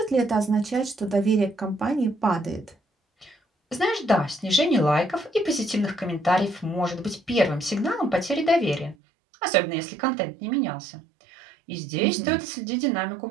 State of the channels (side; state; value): left; drops out; at 9.0 s